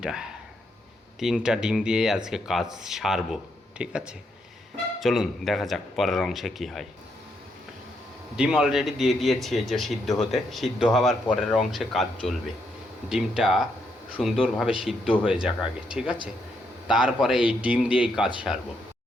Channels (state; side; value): normal; both; correlation 0.77